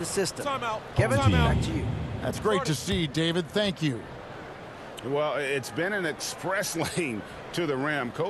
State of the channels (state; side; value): identical; both; correlation 1.00